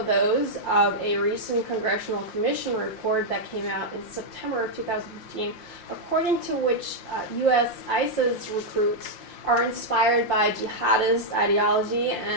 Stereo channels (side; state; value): right; late; 5.7 ms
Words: those of a recent Congressional Commission report that came out in September of 2015, according to which U.S. ISIS recruits are inspired by jihadist ideology